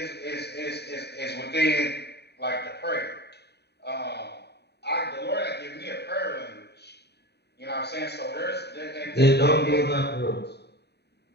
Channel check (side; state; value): right; late; 0.48 ms